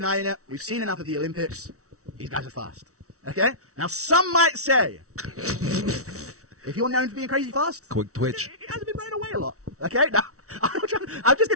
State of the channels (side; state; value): left; late; 0.64 ms